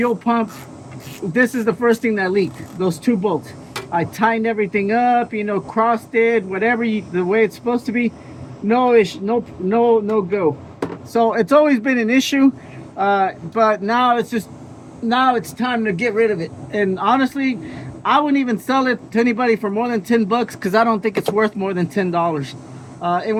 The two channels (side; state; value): both; identical; correlation 1.00